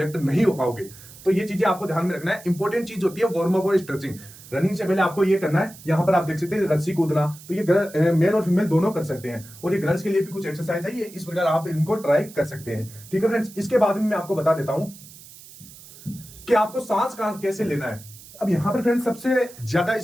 नहीं हो पाओगे। तो ये चीजें आपको ध्यान में रखना है। इंपॉर्टेंट चीज होती है वार्म अप और स्ट्रेचिंग। रनिंग से पहले आपको ये करना है। यहां पर आप देख सकते हैं रस्सी कूदना, तो ये मेल और फीमेल दोनों कर सकते हैं। और ये गर्ल्स के लिए भी कुछ एक्सरसाइज है, ये इस प्रकार आप इनको ट्राई कर सकते हैं। ठीक है फ्रेंड्स, इसके बाद में मैं आपको बता देता हूं कि आपको सांस कैसे लेना है। अब यहां पर फ्रेंड्स, सबसे ज्यादा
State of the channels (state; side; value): noise; right; hiss, 19 dB below the sound